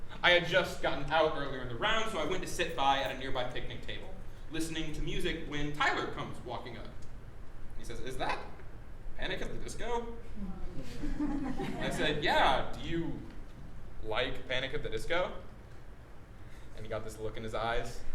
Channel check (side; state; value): both; identical; correlation 1.00